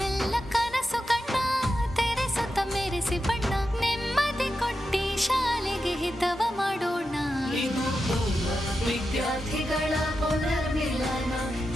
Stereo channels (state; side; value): normal; both; correlation 0.89